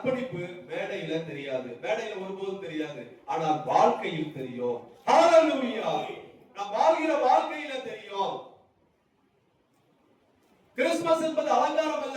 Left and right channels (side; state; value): both; identical; correlation 1.00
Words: மேடையில தெரியாது, மேடையில ஒருபோதும் தெரியாது, ஆனால் வாழ்க்கையில் தெரியும். ஹalleluya! நாம் வாழ்கிற வாழ்க்கையில தெரியும். கிறிஸ்துமஸ் என்பது அலங்காரம்